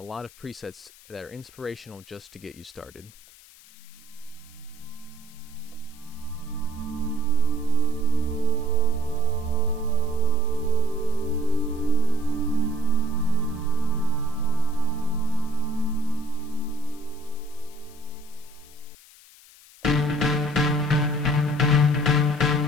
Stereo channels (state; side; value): noise; left; hiss, 23 dB below the sound